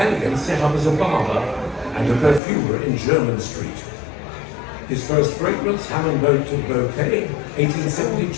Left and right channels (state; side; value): drops out; right; at 2.4 s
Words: set up as a barber and a perfumer in Jermyn Street. His first fragrance, Hammond Boat to Bouquet,